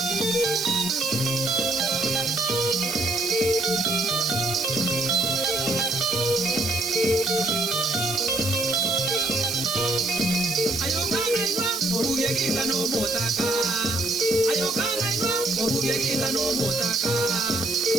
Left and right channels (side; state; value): right; noise; hiss, 6 dB below the sound